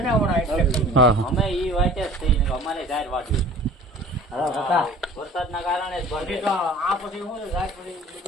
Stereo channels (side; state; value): both; normal; correlation 0.45